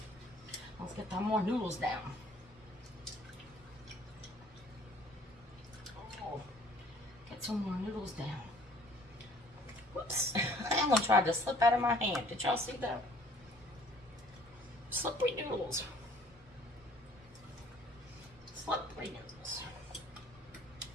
Let's get some more noodles down. Oh, get some more noodles down. Whoops. That one tried to slip out of my hand. Did y'all see that? Slippery noodles. Slippery noodles.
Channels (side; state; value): both; normal; correlation 0.56